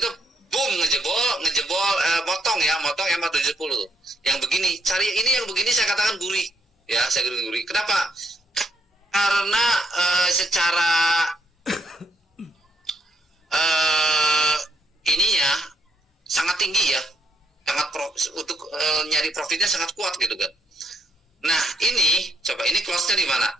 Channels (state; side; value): normal; both; correlation 0.73